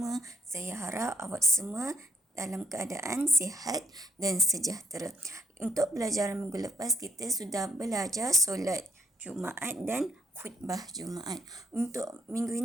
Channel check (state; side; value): normal; both; correlation 0.69